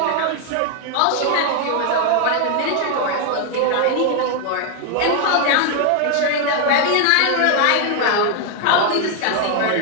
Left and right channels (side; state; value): both; different; correlation 0.00